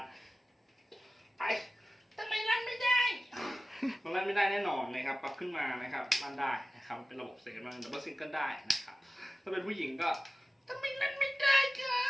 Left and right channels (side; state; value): both; normal; correlation 0.96